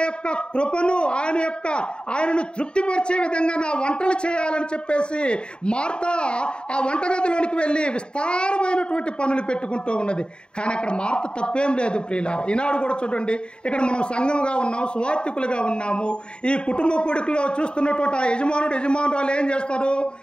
యొక్క కృపను ఆయనను తృప్తిపరిచే విధంగా నా వంటలు చేయాలని చెప్పేసి మార్త ఆ వంటగదిలోనికి వెళ్ళి విస్తారమైనటువంటి పనులు పెట్టుకుంటూ ఉన్నది. కానీ అక్కడ మార్త తప్పేం లేదు ప్రియులారా. ఈనాడు కూడా చూడండి, ఇక్కడ మనం సంఘంగా ఉన్నాం, సువార్థికులుగా ఉన్నాము. ఈ కుటుంబ కూడికలో చూస్తున్నటువంటి ఆ యజమానురాలు ఏం చేస్తారు?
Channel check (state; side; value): late; right; 0.051 ms